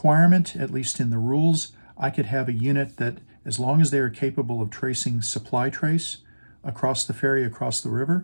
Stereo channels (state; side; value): inverted; both; correlation -1.00